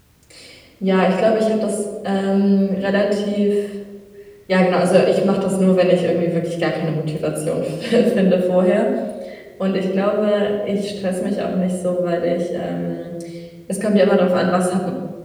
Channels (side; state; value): both; identical; correlation 1.00